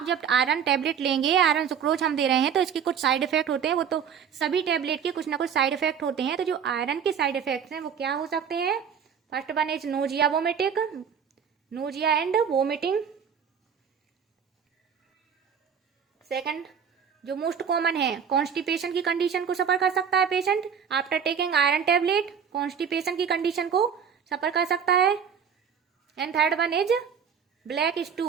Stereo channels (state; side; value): quieter; left; 7.4 dB